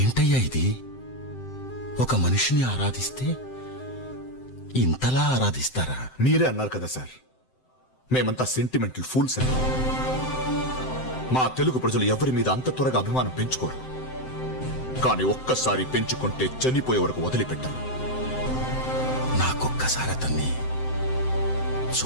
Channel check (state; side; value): late; right; 7.8 ms